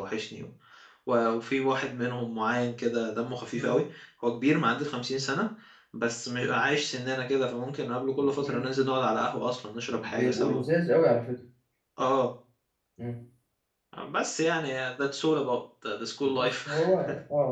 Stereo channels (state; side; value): identical; both; correlation 1.00